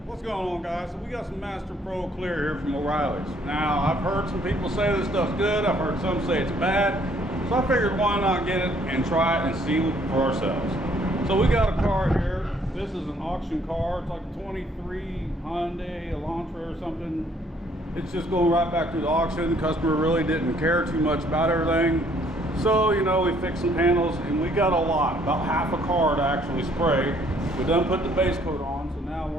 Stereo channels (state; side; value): normal; both; correlation 0.64